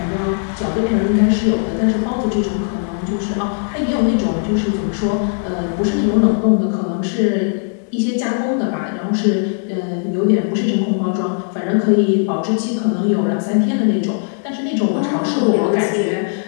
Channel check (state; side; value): silent; right; 58 dB below the other